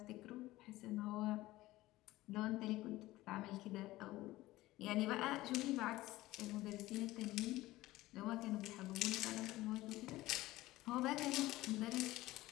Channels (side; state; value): right; quieter; 17.5 dB